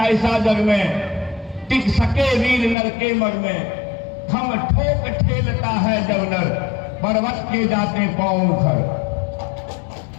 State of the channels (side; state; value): right; drops out; at 2.8 s